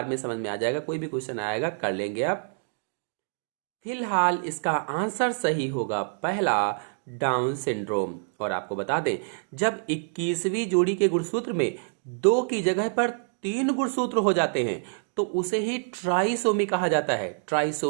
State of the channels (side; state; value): left; silent; 60 dB below the other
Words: में समझ में आ जाएगा। कोई भी क्वेश्चन आएगा कर लेंगे आप। फिलहाल इसका आंसर सही होगा पहला, डाउन सिंड्रोम। और आपको बता दें जब 21वीं जोड़ी के गुणसूत्र में 2 की जगह पर 3 गुणसूत्र हो जाते हैं तो उसे ही ट्राइसोमी कहा जाता है।